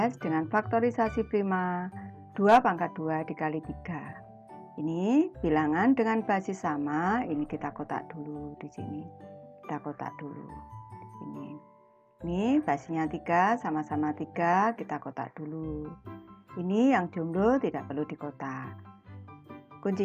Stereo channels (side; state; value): both; identical; correlation 1.00